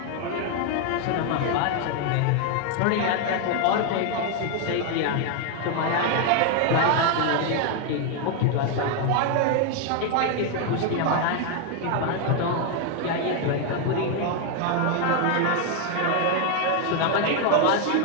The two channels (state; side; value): different; both; correlation 0.01